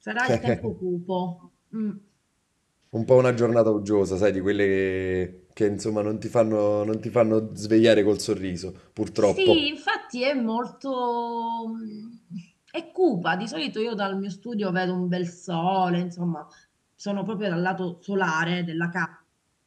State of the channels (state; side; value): identical; both; correlation 1.00